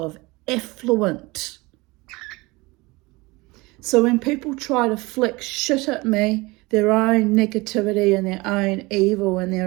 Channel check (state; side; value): quieter; left; 23.2 dB